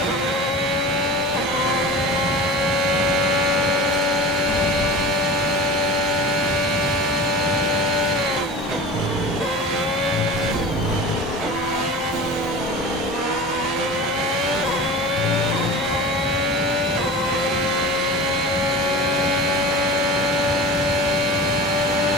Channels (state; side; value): normal; both; correlation 0.36